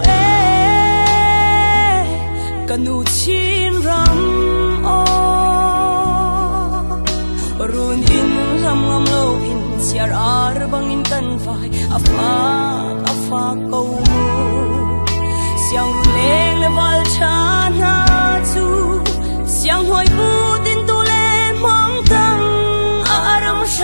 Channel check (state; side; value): inverted; both; correlation -1.00